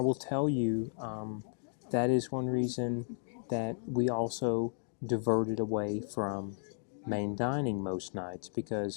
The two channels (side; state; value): right; silent; digital silence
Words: will tell you, that is one reason that we also diverted away from main dining most nights,